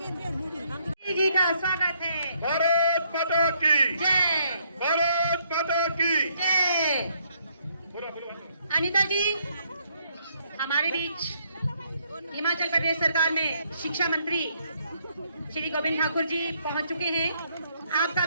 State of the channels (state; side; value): inverted; both; correlation -0.70